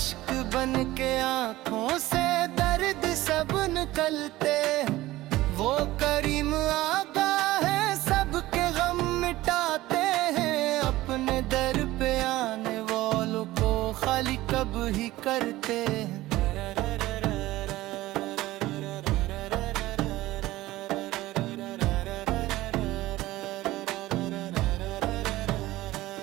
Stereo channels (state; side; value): quieter; left; 17.2 dB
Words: बन के आंखों से दर्द सब निकलते हैं। वो करीम आका है सबके गम मिटाते हैं, अपने दर पे आने वालों को खाली कब ही करते हैं।